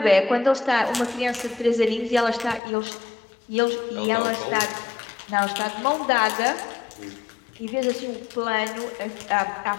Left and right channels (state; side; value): drops out; right; at 2.6 s